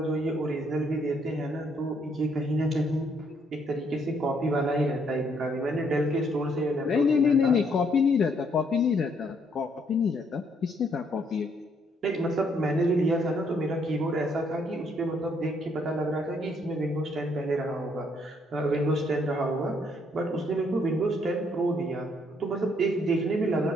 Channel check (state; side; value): normal; both; correlation 0.70